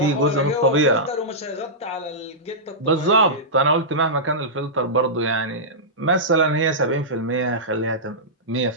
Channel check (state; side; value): normal; both; correlation -0.14